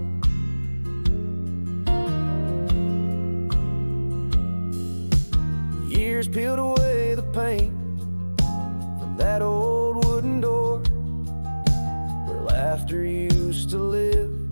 Years peeled away the paint from that old wooden door where laughter used to live.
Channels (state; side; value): inverted; both; correlation -1.00